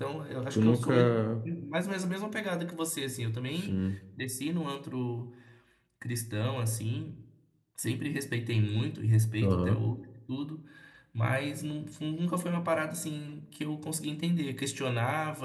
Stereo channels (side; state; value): both; identical; correlation 1.00